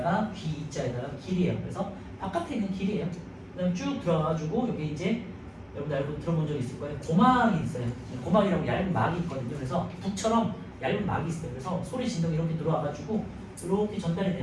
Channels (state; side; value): identical; both; correlation 1.00